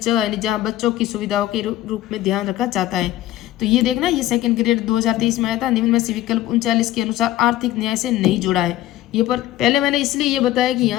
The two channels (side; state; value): right; quieter; 14.3 dB